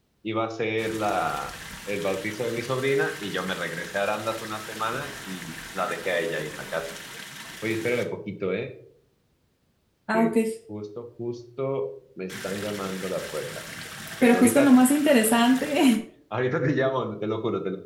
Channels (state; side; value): identical; both; correlation 1.00